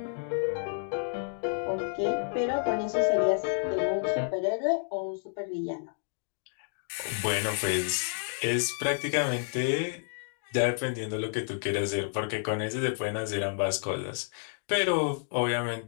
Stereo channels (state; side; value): silent; right; digital silence